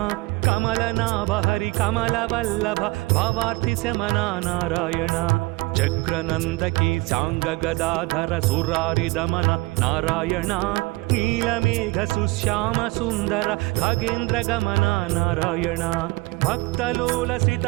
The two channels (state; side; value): quieter; left; 22.9 dB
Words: కమలనాభ హరి కమల వల్లభ భవార్తి శమన నారాయణ చక్రనందకి సాంగ గదాధర సురారి దమన నారాయణ నీలమేఘ సుశ్యామ సుందర ఖగేంద్ర గమన నారాయణ భక్తలోలసిత